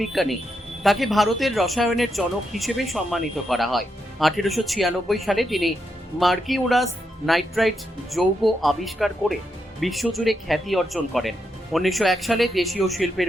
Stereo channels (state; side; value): normal; both; correlation 0.83